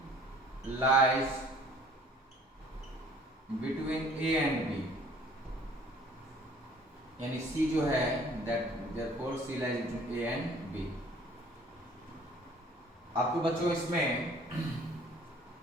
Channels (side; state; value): both; normal; correlation 0.53